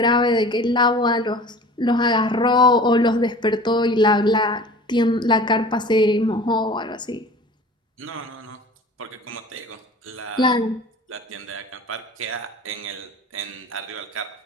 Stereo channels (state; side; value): normal; both; correlation 0.42